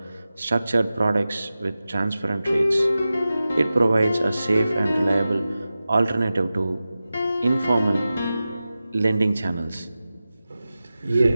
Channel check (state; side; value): inverted; both; correlation -0.94